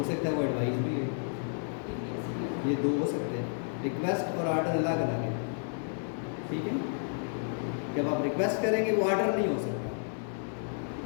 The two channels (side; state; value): right; silent; digital silence